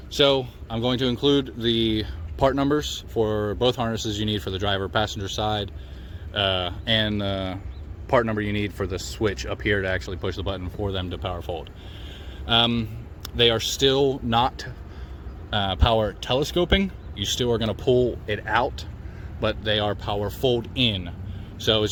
So I'm going to include the part numbers for both harnesses you need for the driver passenger side, and the part number you need for the switch up here to actually push the button for them to power fold. They are still not power telescoping. You still are going to pull it out, but they are power fold in. So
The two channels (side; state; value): both; identical; correlation 1.00